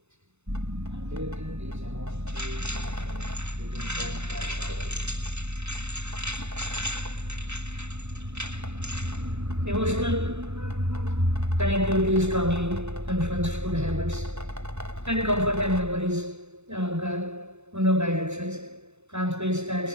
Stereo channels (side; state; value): left; late; 0.82 ms